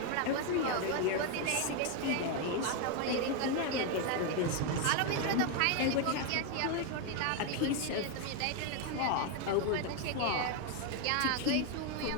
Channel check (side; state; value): both; different; correlation 0.01